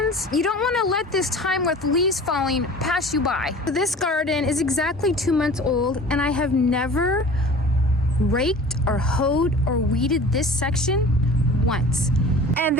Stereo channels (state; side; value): normal; both; correlation 0.42